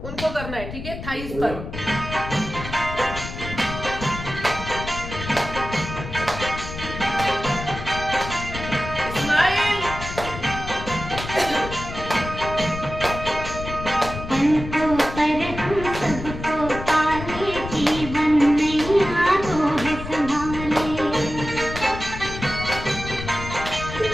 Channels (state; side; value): noise; left; rumble, 9 dB below the sound